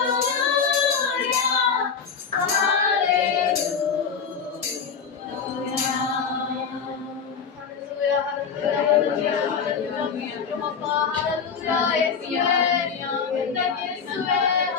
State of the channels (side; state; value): right; quieter; 6.2 dB